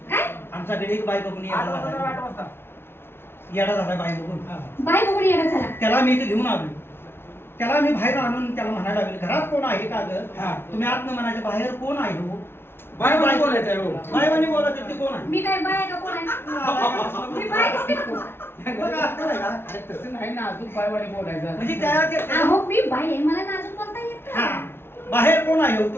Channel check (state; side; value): late; right; 0.11 ms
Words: काय आमच्याकडे एक बाई बघून 8 येडा वाजता झाला 8 वाजता येडा झाला बाई बघून बाय बघून येणं झाला त्याला मी इथे घेऊन आलो त्याला मी बाहेर आणून त्याला म्हणायला लागले घरात कोण आहे का ग हा. तुम्ही आत म्हणायचे बाहेर कोण आहे हो बाय बाय बोलायचं आहे हो बायवानी बोलत ते कोण आहे मी काय बाय आहे का कोण आहे मी बाय दिसते का तुम्हाला? बघा, असं आहे का? अरे तसं नाही ना अजून बायवानी बोलायचं म्हणजे त्या अहो मी बाय आहे मला नाजूक बोलता येत हा नाही. बाहेर कोण आहे हो?